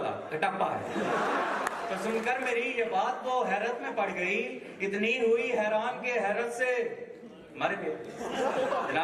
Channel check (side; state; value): both; identical; correlation 1.00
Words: कटप्पा है। तो सुनकर मेरी ये बात वो हैरत में पड़ गई, इतनी हुई हैरान के हैरत से मर गए।